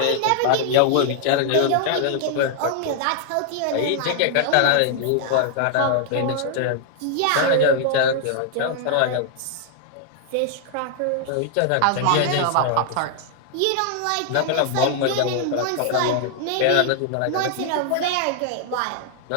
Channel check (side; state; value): both; different; correlation 0.00